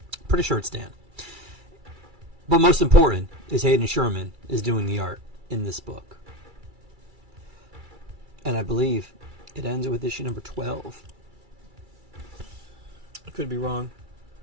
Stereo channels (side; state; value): left; late; 2.3 ms